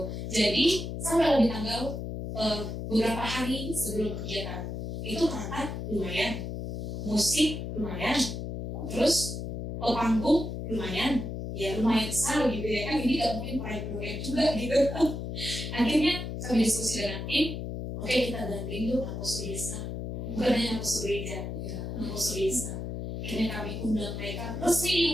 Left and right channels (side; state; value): left; noise; hum, 5 dB below the sound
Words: Jadi sampai di tanggal beberapa hari sebelum kegiatan itu perangkat lumayan, musik lumayan, terus panggung lumayan, ya lumayan besar gitu ya kan. Ini gak mungkin proyek juga gitu. Akhirnya kami diskusi dengan tim. Oke, kita gandeng yuk Nakosu Desa. Bukan hanya Nakosu Gereja, Nakosu Desa. Akhirnya kami undang mereka,